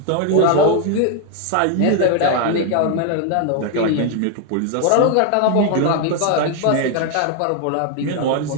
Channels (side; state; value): both; different; correlation 0.01